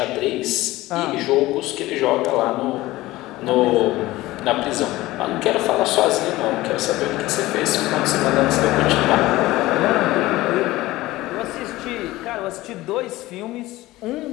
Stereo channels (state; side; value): quieter; right; 18.0 dB